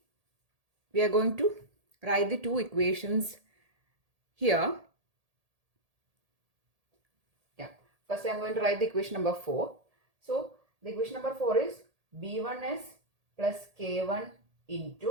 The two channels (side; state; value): left; late; 1.8 ms